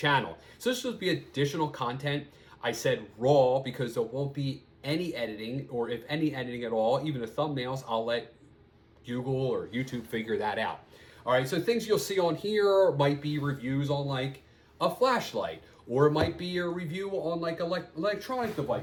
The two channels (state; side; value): identical; both; correlation 1.00